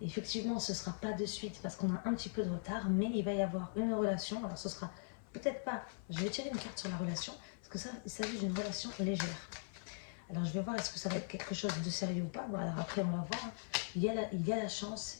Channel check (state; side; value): silent; right; 51 dB below the other